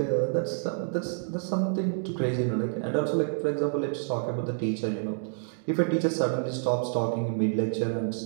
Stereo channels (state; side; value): silent; left; digital silence